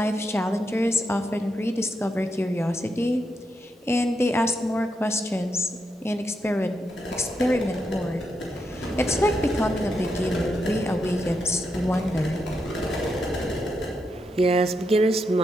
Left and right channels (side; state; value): both; normal; correlation 0.83